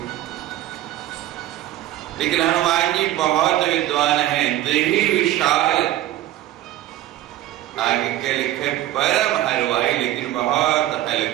लेकिन हनुमान जी बहुत विद्वान हैं, देही विशाल। आगे के लिखे परम हलवाई, लेकिन बहुत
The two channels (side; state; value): left; quieter; 14.0 dB